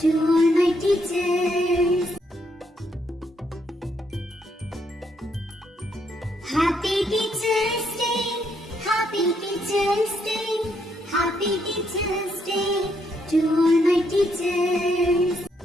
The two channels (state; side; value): normal; both; correlation 0.75